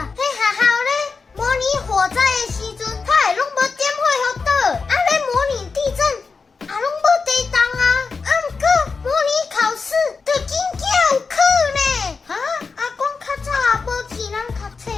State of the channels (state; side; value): quieter; right; 4.7 dB